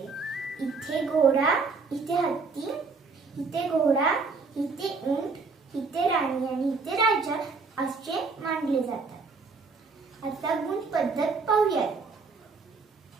इथे घोडा, इथे हत्ती, इथे घोडा, इथे ऊंट, इथे राणी आणि इथे राजा असे मानले जातात. आता गुण पद्धत पाहूयात.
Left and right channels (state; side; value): quieter; left; 4.5 dB